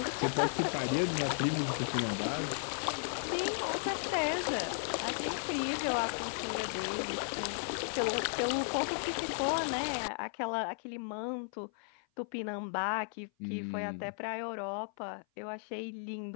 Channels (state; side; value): silent; right; 54 dB below the other